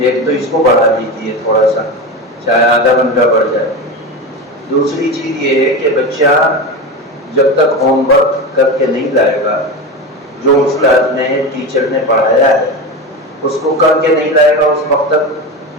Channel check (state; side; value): normal; both; correlation 0.22